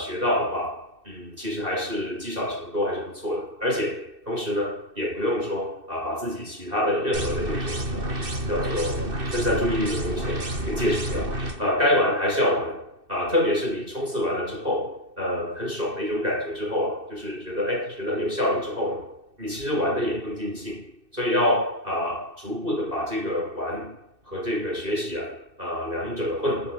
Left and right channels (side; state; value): left; late; 2.6 ms